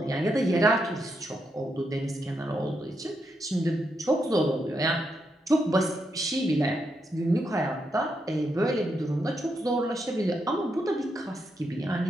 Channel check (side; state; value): both; normal; correlation 0.82